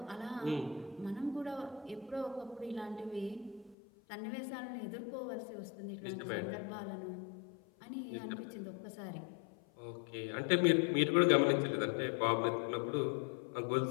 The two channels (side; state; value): right; drops out; at 3.8 s